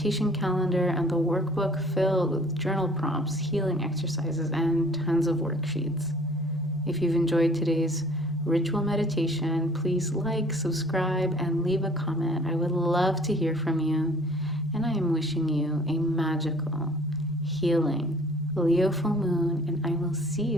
calendar and the workbook filled with journal prompts, healing exercises, and tons of worksheets. If you've enjoyed today's ritual meditation, please like, subscribe, and leave a comment. I would love to hear from you. And I am wishing you a magical, healing Leo full moon, and I will see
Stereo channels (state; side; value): normal; both; correlation 0.52